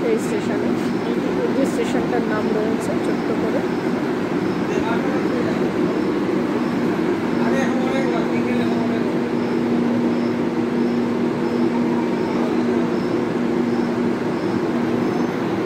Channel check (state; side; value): identical; both; correlation 1.00